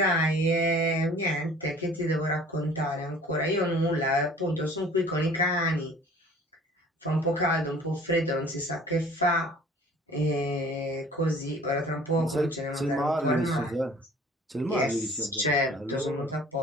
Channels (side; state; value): both; normal; correlation 0.49